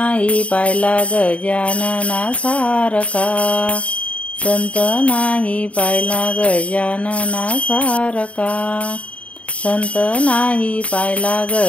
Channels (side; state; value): right; late; 0.064 ms